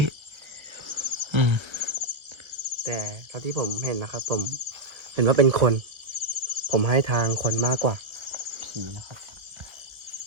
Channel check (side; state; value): left; late; 1.3 ms